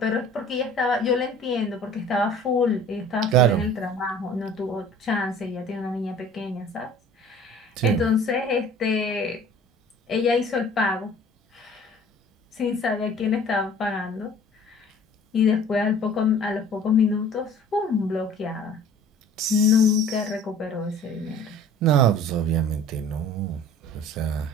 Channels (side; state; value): both; normal; correlation 0.48